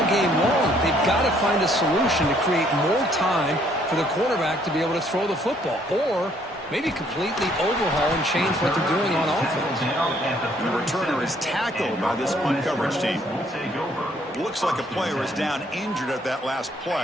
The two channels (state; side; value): normal; both; correlation 0.65